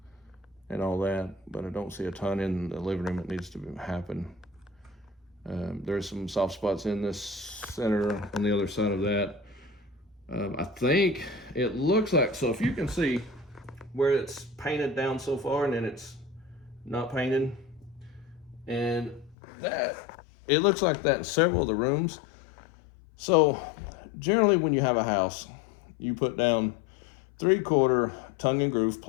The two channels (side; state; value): right; drops out; at 19.4 s